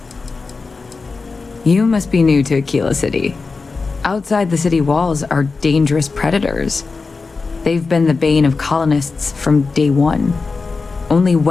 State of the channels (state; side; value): quieter; right; 4.3 dB